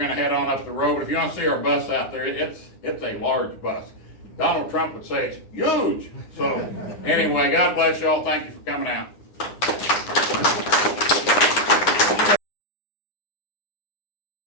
to head on up the road. If you want to see our bus out there, it's a large bus. Donald Trump would say it's huge. So anyway, God bless you all. Thank you for coming out.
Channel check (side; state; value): right; late; 9.8 ms